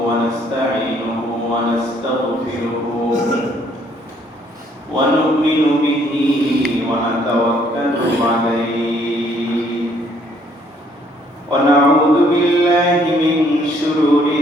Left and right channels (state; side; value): normal; both; correlation 0.65